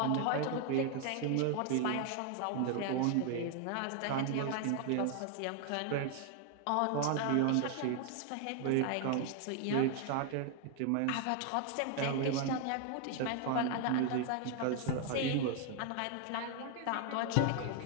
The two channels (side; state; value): both; different; correlation 0.00